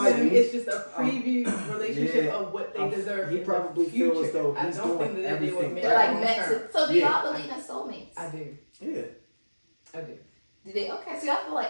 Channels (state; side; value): inverted; both; correlation -1.00